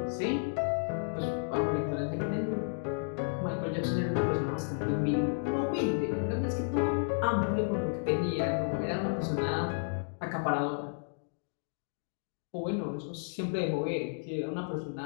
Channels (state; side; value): silent; right; digital silence